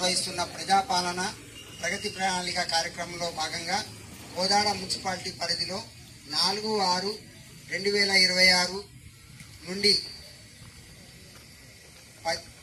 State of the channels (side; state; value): both; identical; correlation 1.00